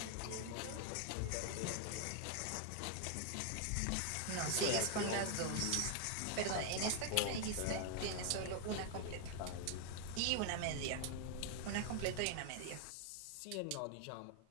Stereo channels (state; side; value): different; both; correlation 0.00